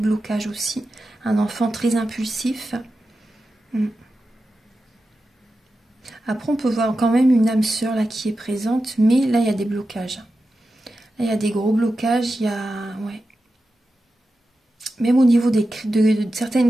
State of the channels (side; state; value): both; normal; correlation 0.91